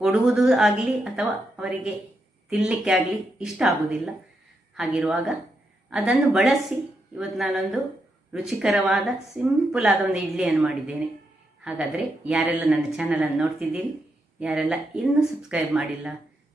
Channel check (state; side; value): normal; both; correlation 0.83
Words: ಕೊಡುವುದು ಆಗಲಿ ಅಥವಾ ಅವರಿಗೆ ತಿನ್ನಲಿಕ್ಕೆ ಆಗಲಿ ಇಷ್ಟ ಆಗುವುದಿಲ್ಲ. ಹಾಗಿರುವಾಗ ಅದನ್ನು ಬಳಸಿ ಇವತ್ತು ನಾನೊಂದು ರುಚಿಕರವಾದ ಸಿಂಪಲ್ ಆದ ಒಂದು ಇಡ್ಲಿಯನ್ನು ಮಾಡಿದ್ದೇನೆ. ಹಾಗಾದರೆ ಯಾರೆಲ್ಲ ನನ್ನ ಚಾನಲನ್ನು ನೋಡ್ತಿದ್ದೀರಿ, ಯಾರೆಲ್ಲ ಇನ್ನೂ ಸಬ್ಸ್ಕ್ರೈಬ್ ಮಾಡಿಲ್ಲ,